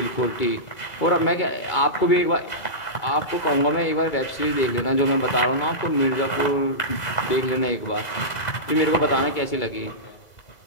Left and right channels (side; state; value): right; late; 2.0 ms